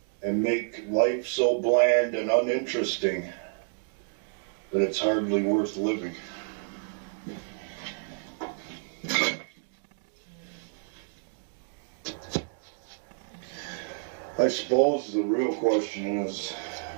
and make life so bland and uninteresting that it's hardly worth living. I suppose the real question is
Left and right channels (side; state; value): left; silent; digital silence